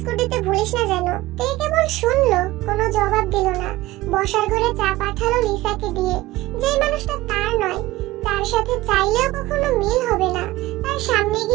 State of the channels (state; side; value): quieter; left; 17.9 dB